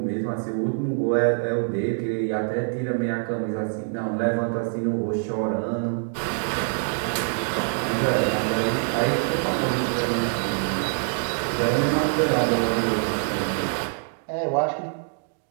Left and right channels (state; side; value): silent; left; digital silence